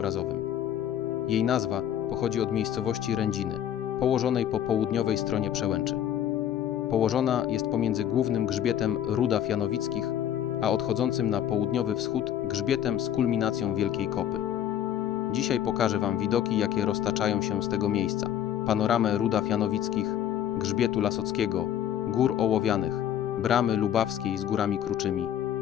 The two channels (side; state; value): right; quieter; 10.5 dB